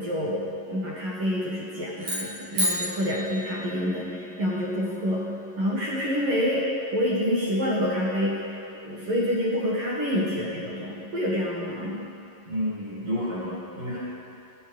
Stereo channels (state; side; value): late; left; 11 ms